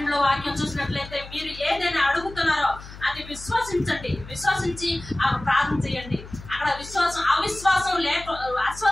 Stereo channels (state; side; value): noise; left; hum, 15 dB below the sound